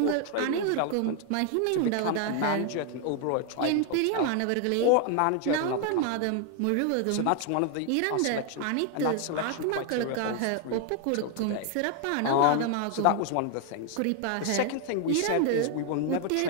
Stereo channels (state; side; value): different; both; correlation 0.00